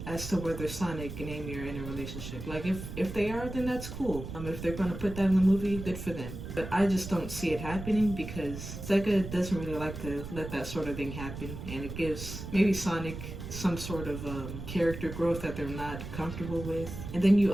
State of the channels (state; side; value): noise; right; rumble, 9 dB below the sound